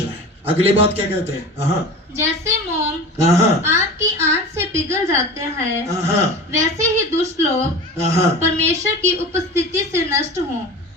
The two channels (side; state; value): both; normal; correlation 0.34